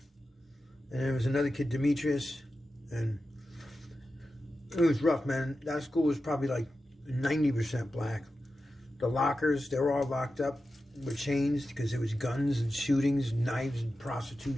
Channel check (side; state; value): both; normal; correlation 0.92